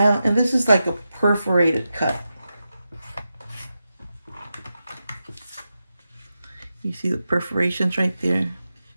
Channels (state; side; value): inverted; both; correlation -0.90